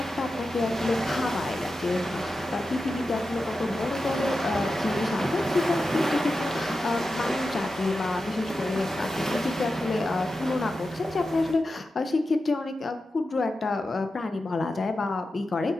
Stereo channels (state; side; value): normal; both; correlation 0.91